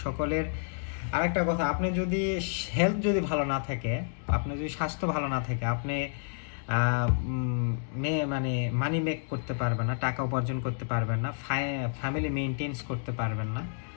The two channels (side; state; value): right; silent; digital silence